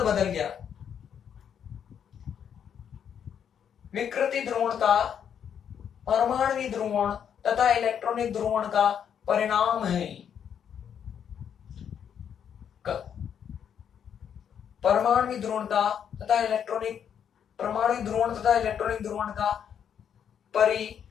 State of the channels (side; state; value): right; quieter; 8.3 dB